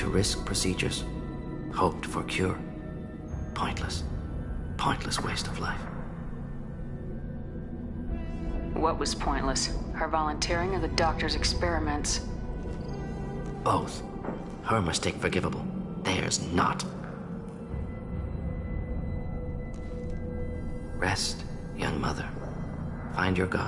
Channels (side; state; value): both; identical; correlation 1.00